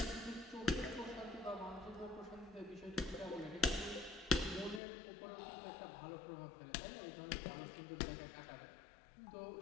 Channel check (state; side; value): drops out; right; at 4.8 s